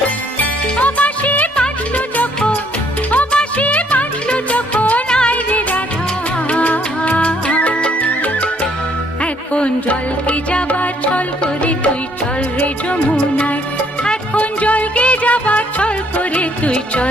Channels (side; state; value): both; normal; correlation 0.66